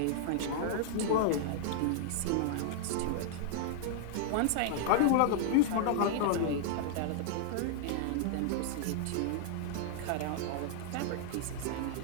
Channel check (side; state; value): both; different; correlation -0.01